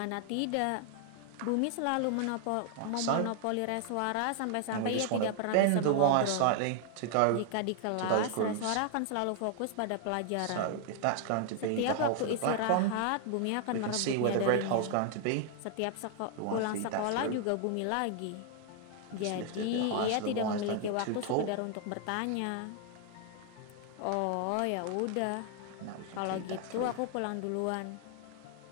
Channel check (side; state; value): both; different; correlation 0.00